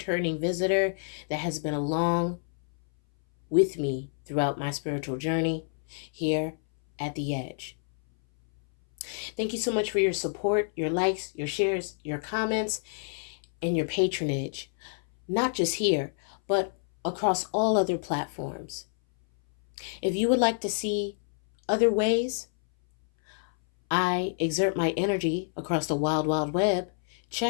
visitor that has been along with me throughout my spiritual journey here at the Edge. Thank you so much for your support, your likes, your shares, your comments, and your patronage. Not just here, but across all other platforms. If you would like to see other ways I exert my energy across the wild, wild web,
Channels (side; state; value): right; silent; 59 dB below the other